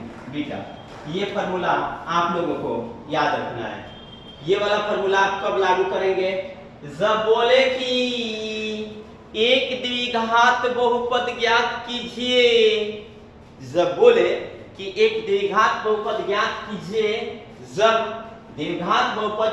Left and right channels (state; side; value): identical; both; correlation 1.00